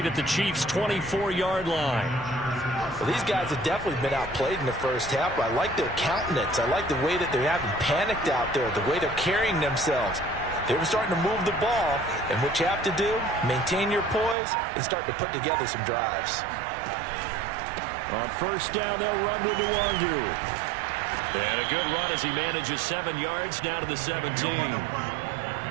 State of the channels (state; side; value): drops out; left; at 14.4 s